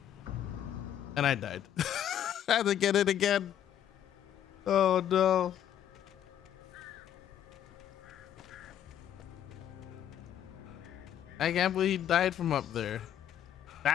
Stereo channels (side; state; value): right; quieter; 10.4 dB